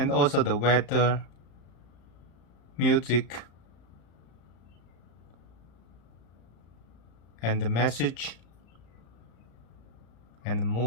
also the weather, music, and the message, and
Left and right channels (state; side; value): late; right; 35 ms